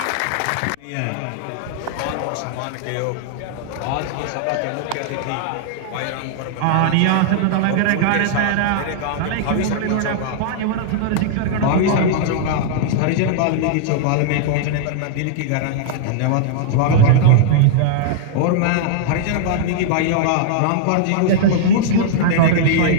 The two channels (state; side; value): different; both; correlation -0.01